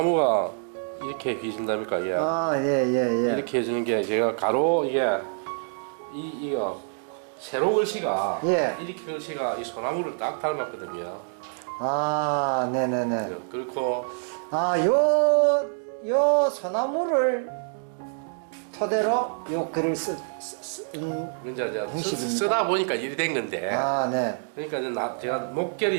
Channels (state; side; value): silent; left; digital silence